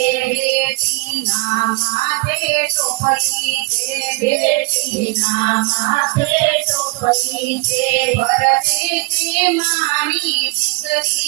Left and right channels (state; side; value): quieter; left; 26.0 dB